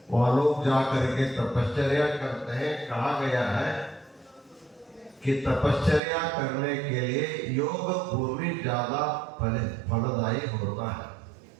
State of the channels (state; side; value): drops out; left; at 6.0 s